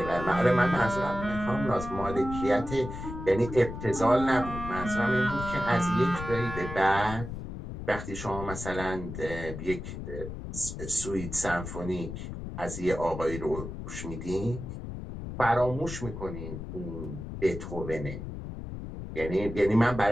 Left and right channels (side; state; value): left; noise; rumble, 8 dB below the sound